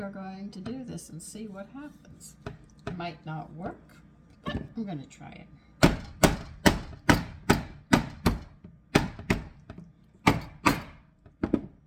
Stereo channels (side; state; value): both; identical; correlation 1.00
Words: are going to do this and see what happens. It might not work, but I'm going to try it.